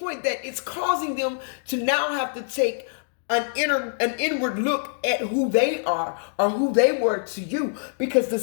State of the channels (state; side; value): silent; right; digital silence